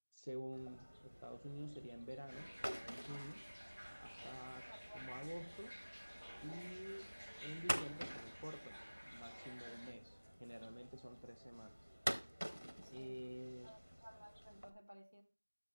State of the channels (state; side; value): inverted; both; correlation -1.00